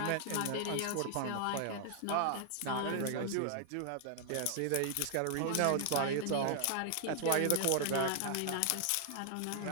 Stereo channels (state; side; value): different; both; correlation 0.00